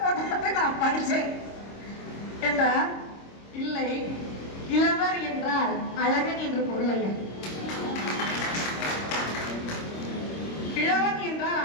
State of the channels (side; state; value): right; late; 26 ms